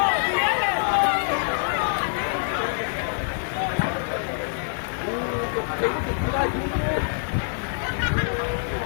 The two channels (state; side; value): silent; right; digital silence